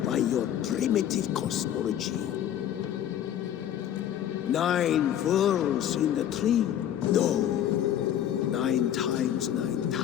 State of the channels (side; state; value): right; quieter; 10.6 dB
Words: by your primitive cosmology. 9 worlds in the tree? No. 9 times